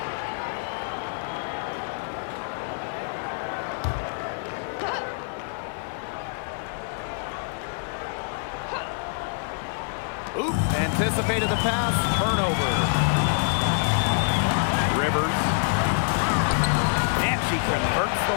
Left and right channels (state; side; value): silent; right; digital silence